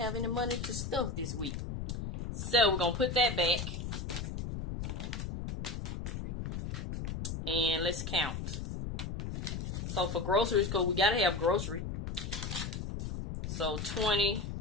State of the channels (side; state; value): left; noise; rumble, 4 dB below the sound